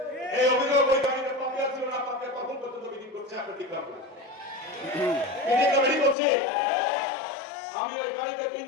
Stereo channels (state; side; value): drops out; right; at 6.2 s